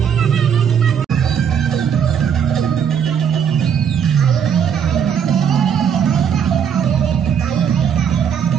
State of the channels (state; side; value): quieter; left; 7.9 dB